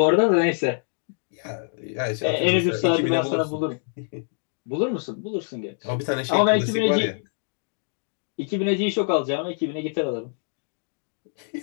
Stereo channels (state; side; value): silent; right; 62 dB below the other